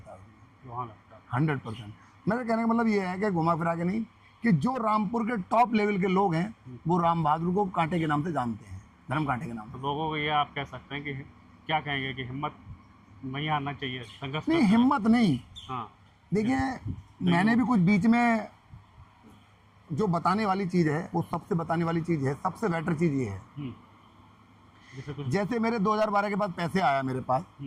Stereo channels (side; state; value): both; identical; correlation 1.00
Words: है वहाँ लगता है। 100%। मेरे कहने का मतलब ये है कि घुमा फिरा के नहीं, कि जो रामपुर के टॉप लेवल के लोग हैं वो राम बहादुर को कांटे के नाम से जानते हैं, धर्म कांटे के नाम से। तो लोगों को ये आप कह सकते हैं कि क्या कहेंगे कि हिम्मत नहीं हारना चाहिए, संघर्ष नहीं, करना हिम्मत नहीं। हाँ। देखिए, मैंने भी कुछ बीच में जो बताने वाली चीज़ है, वो सबसे बताने वाली चीज़ है, सबसे बेटर चीज़ ये है। जैसे कुछ, जैसे मेरे 2012 के बाद पैसे आया मेरे पास,